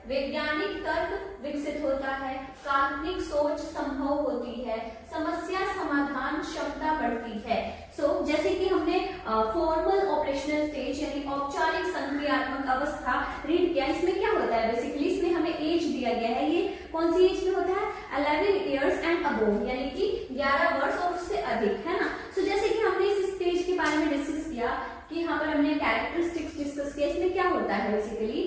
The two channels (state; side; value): identical; both; correlation 1.00